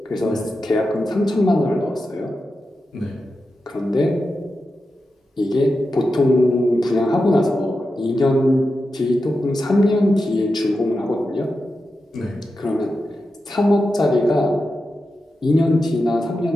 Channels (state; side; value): normal; both; correlation 0.90